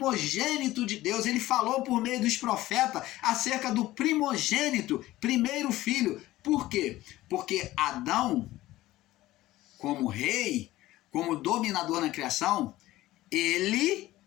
de Deus. Ele falou por meio dos profetas acerca do primogênito, primeiro filho. Por quê? Porque Adão, como rei, como dominador na criação, ele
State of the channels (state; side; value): quieter; right; 16.4 dB